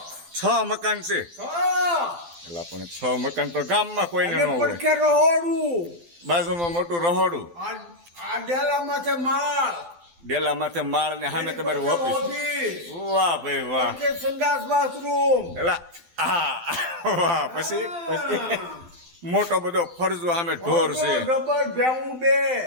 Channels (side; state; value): left; late; 12 ms